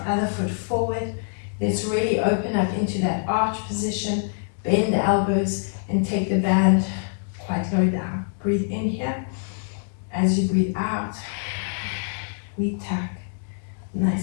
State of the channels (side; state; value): right; silent; digital silence